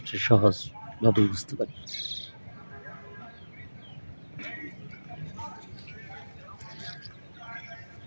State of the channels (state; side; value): inverted; both; correlation -1.00